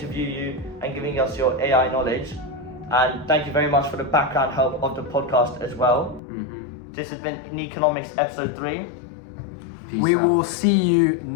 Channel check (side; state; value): right; drops out; at 6.2 s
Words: you and giving us your AI knowledge. And thank you very much for the background help of the podcast as well. This has been Neekonomics episode 3. We will see you